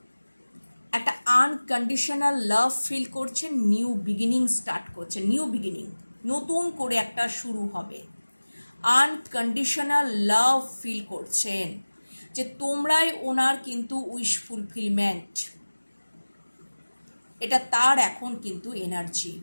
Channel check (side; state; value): both; inverted; correlation -1.00